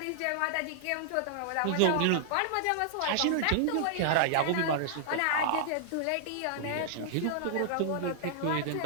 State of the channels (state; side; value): different; both; correlation -0.01